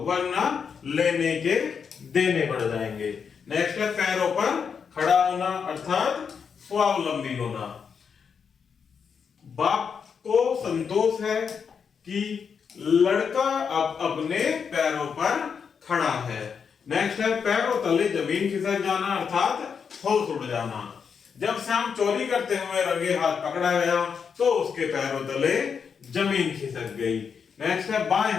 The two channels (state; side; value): quieter; right; 6.5 dB